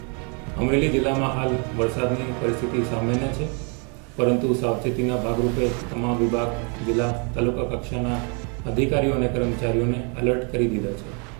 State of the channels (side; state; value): left; quieter; 36.3 dB